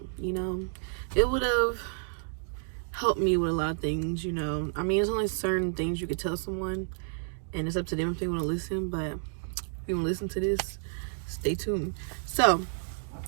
It would have helped me with a lot of things. I mean, there's only certain things you could tell someone, and it's up to them if they want to listen. But if you want to listen to this, stay tuned. So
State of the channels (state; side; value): silent; left; digital silence